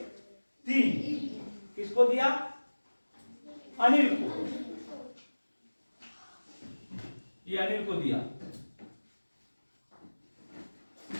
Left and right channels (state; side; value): inverted; both; correlation -1.00